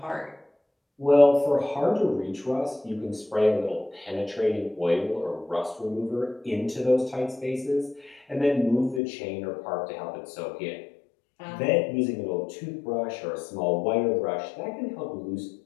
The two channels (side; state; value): right; drops out; at 9.0 s